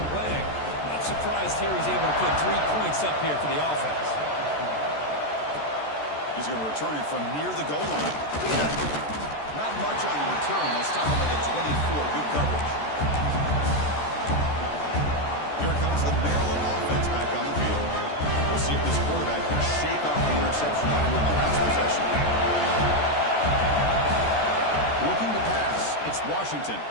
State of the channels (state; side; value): late; right; 14 ms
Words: leg. Not surprised here he's able to put 3 points up here for the offense. He's going to return it from near the goal line. Not much on the return. They'll stop him at the 24. Good coverage. Here comes the Maryland offense back on the field. We'll see if this quarterback can shake off the interception in the last possession. Looking to pass. It's Washington.